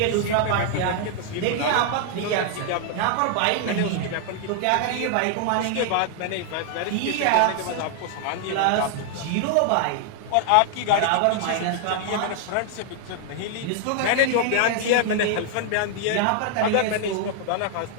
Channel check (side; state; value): both; different; correlation 0.00